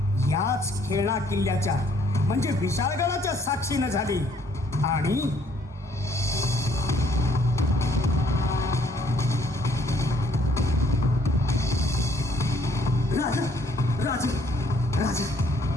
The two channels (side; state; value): both; normal; correlation 0.64